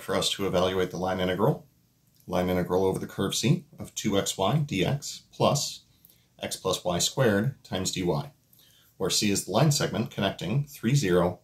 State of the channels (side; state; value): both; identical; correlation 1.00